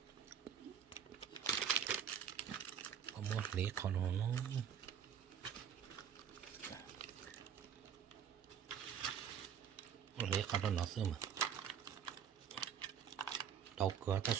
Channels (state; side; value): quieter; left; 8.3 dB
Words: có một lý còn nó lấy cả nó xưa mà đau cửa ta